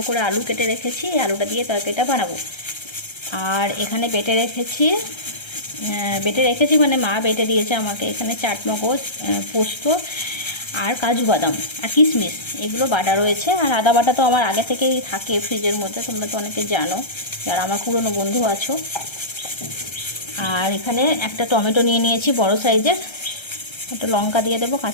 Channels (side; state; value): right; late; 1.3 ms